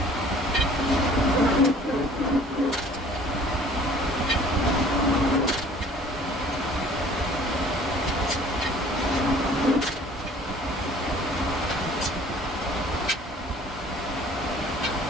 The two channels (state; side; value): normal; both; correlation 0.52